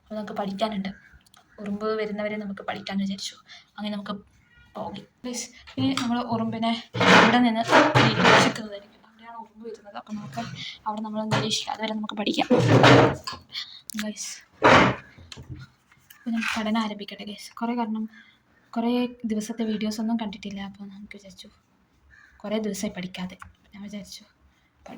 അപ്പോൾ നമുക്ക് പഠിക്കാനുണ്ട്, ഉറുമ്പ് വരുന്നവരെ നമുക്ക് പഠിക്കാൻ വിചാരിച്ചു. അങ്ങനെ നമുക്ക് പോകി പ്ലീസ്. ഇനി നമ്മൾ ഉറുമ്പിനെ ഇവിടെ നിന്ന് നിരീക്ഷിക്കുന്നതായിരിക്കും. അവിടെയാണ് ഉറുമ്പ് വരുന്നത്. അപ്പം നമുക്ക് അവിടെ നമ്മൾ നിരീക്ഷിക്കാം. അതുവരെ നമുക്ക് പഠിക്കാം ഗൈസ്. അപ്പോൾ ഞാൻ പഠനം ആരംഭിക്കട്ടെ ഗൈസ്. കുറേ ദിവസത്തെ വീഡിയോസൊന്നും കണ്ടിട്ടില്ല. അപ്പോൾ നമുക്ക് വിചാരിച്ചു കുറേ ദിവസമായി പഠിക്കാതെ. ഞാൻ വിചാരിച്ചു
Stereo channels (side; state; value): both; identical; correlation 1.00